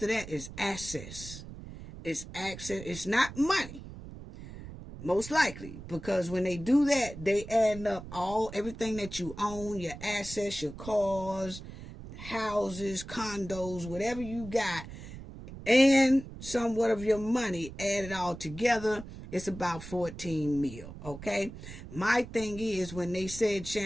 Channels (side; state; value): right; noise; rumble, 13 dB below the sound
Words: of that is access. It's access. It's not money. Most likely. Because when they do that, they add up everything that you own, your assets, your cars, houses, condos, whatever you got, and somewhat of your money, add it all together, it's about 14 mil. Okay? My thing is, when they said